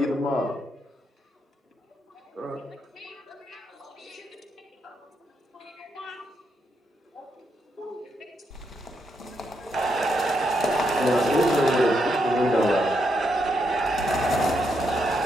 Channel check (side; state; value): both; normal; correlation 0.80